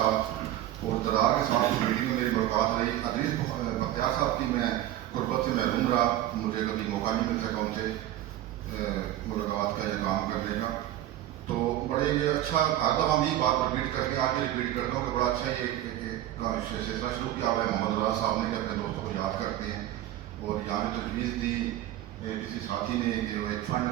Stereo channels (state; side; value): quieter; left; 13.4 dB